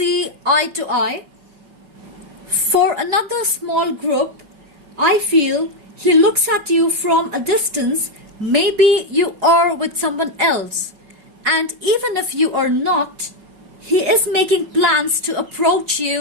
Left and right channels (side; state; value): left; late; 5.3 ms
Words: eye to eye. For another small group, I feel he looks at you from a distance. Maybe you are with someone else, and even if you are not, he is making plans to approach